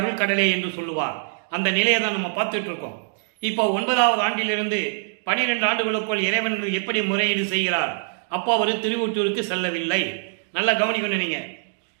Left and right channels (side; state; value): left; silent; digital silence